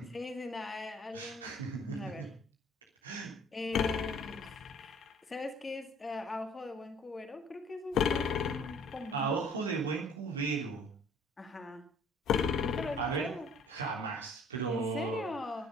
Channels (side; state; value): both; normal; correlation 0.54